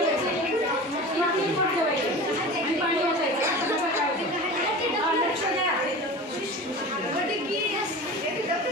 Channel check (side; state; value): both; normal; correlation 0.34